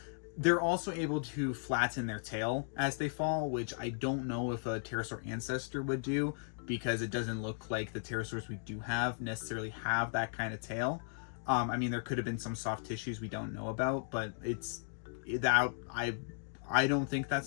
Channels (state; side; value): silent; right; digital silence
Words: They're also able to flatten their tail as they fall, which I don't know if a pterosaur ancestor would do, because it doesn't look like the pterosaurs we do have necessarily have that kind of tail. I mean, there could have been some soft tissues we don't know about, but I don't think